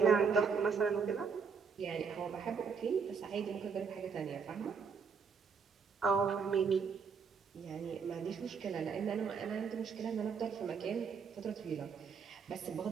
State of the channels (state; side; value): quieter; left; 5.9 dB